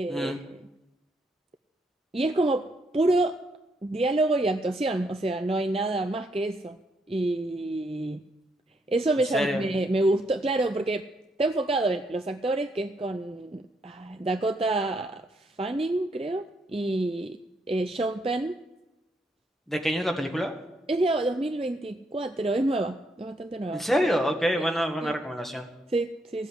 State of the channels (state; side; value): normal; both; correlation 0.75